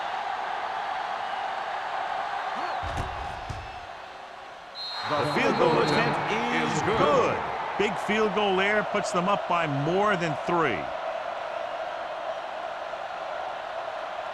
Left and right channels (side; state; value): both; identical; correlation 1.00